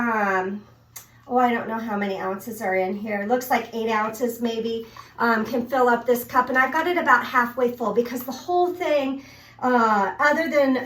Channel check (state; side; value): identical; both; correlation 1.00